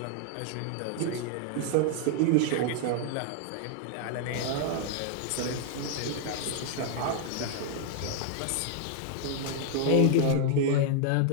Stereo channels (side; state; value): both; different; correlation 0.00